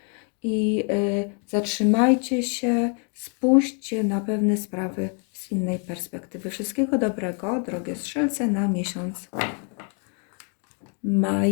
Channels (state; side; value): quieter; right; 39.8 dB